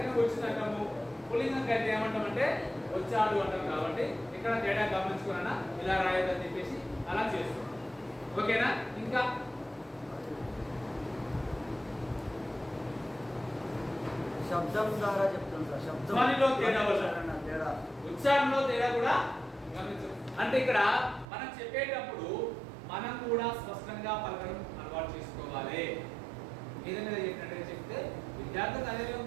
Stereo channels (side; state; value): left; drops out; at 21.2 s